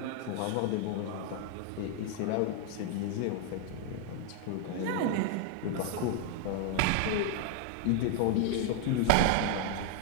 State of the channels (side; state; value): both; different; correlation 0.00